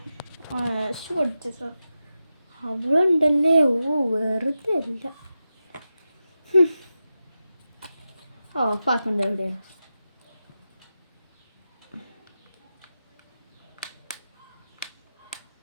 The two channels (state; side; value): inverted; both; correlation -0.91